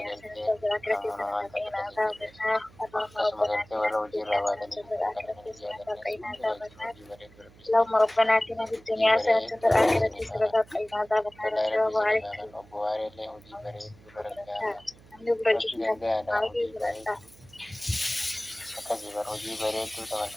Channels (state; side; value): noise; right; hum, 24 dB below the sound